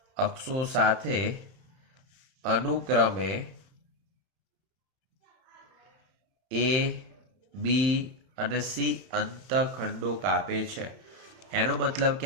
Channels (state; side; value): late; left; 31 ms